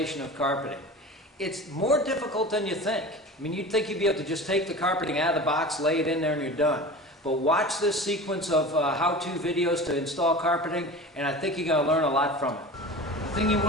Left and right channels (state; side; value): normal; both; correlation 0.34